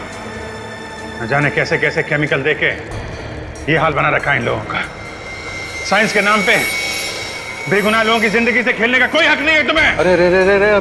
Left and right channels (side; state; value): both; identical; correlation 1.00